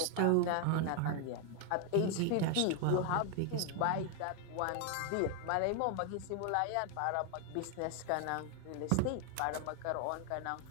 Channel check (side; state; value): both; different; correlation 0.01